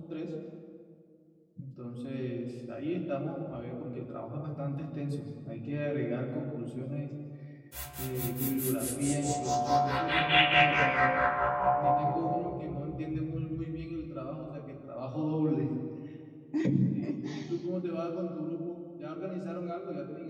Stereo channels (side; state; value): both; identical; correlation 1.00